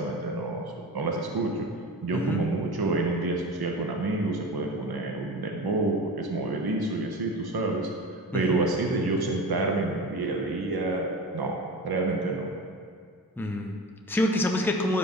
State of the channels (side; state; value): both; normal; correlation 0.31